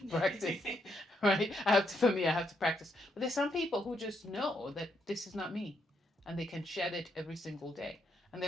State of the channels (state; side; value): normal; both; correlation 0.77